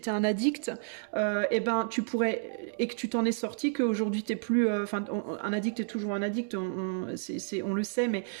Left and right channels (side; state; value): left; silent; digital silence